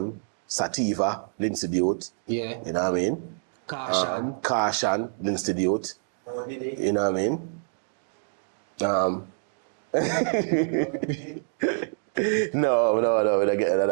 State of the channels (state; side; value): silent; left; digital silence